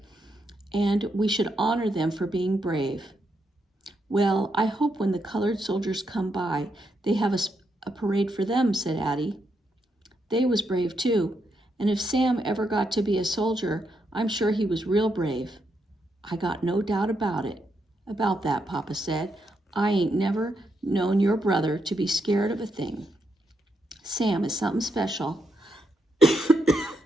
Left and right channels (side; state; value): both; normal; correlation 0.81